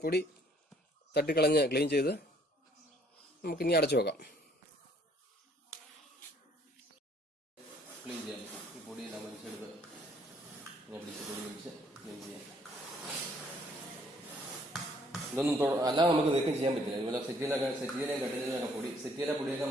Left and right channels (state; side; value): normal; both; correlation 0.63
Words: പൊടി തട്ടിക്കളഞ്ഞ് ക്ലീൻ ചെയ്ത് നമുക്കിനി അടച്ചു വെക്കാം. ക്ലീൻ ചെയ്യാം. ഈ പൊടിയെല്ലാം വലിച്ചെടുത്ത് പൊടി വലിച്ച് ക്ലീൻ ചെയ്യാം. ഇതൊന്നും അല്ലാതെ നമുക്ക് നീക്കം ചെയ്യാൻ പറ്റില്ല. ഇതുപോലെ സെറ്റിയിലെയും കട്ടിലൊക്കെ പൊടിയൊക്കെ